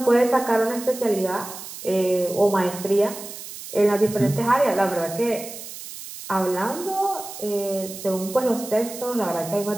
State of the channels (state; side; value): noise; right; hiss, 12 dB below the sound